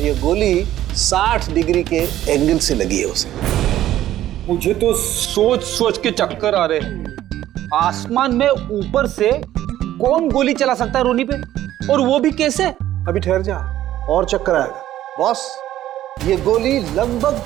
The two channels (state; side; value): quieter; left; 13.1 dB